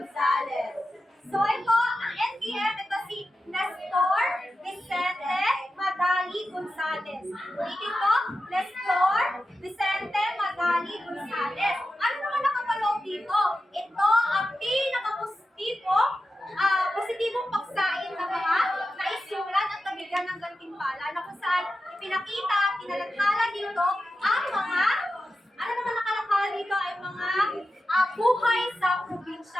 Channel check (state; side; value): normal; both; correlation 0.91